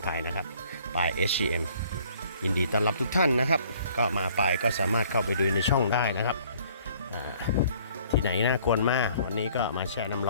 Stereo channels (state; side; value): inverted; both; correlation -0.57